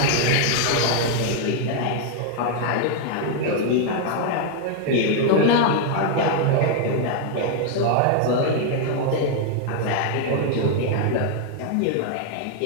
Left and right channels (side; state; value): both; different; correlation 0.00